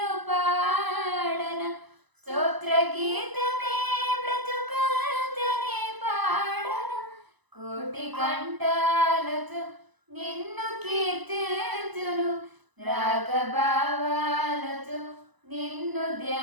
పాడన, స్తోత్ర గీతమే బ్రతుకంతనే పాడన. కోటి కంఠాలతో నిన్ను కీర్తించును, రాగభావాలతో నిన్ను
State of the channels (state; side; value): late; left; 1.0 ms